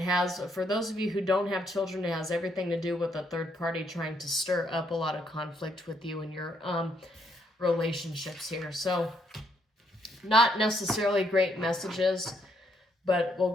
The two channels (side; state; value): both; normal; correlation 0.73